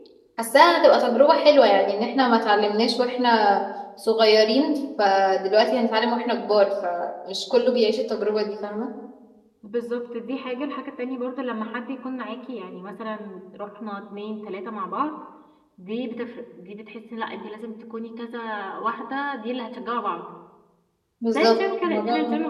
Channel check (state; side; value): identical; both; correlation 1.00